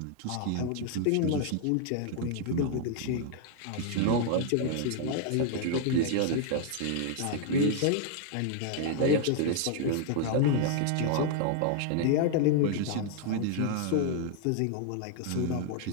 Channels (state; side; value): different; both; correlation 0.00